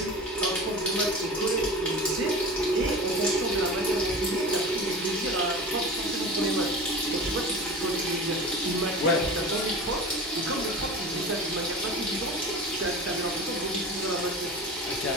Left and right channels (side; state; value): both; normal; correlation 0.33